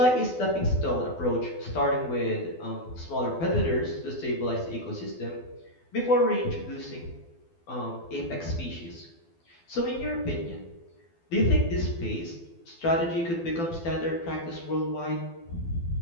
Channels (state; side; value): late; right; 12 ms